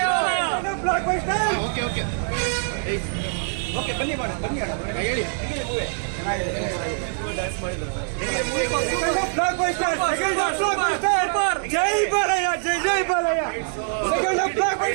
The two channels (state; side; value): silent; left; 63 dB below the other